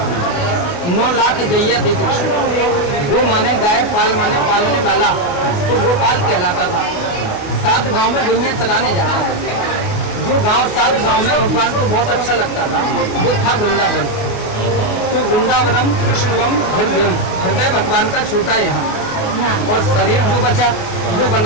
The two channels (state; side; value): late; right; 28 ms